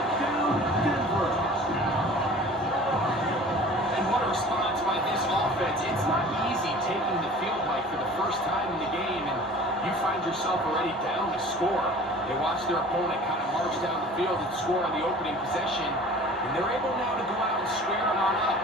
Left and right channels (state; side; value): normal; both; correlation 0.45